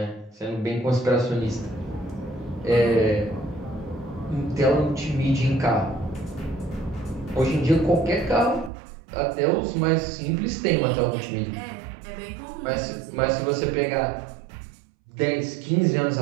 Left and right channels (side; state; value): left; drops out; at 8.7 s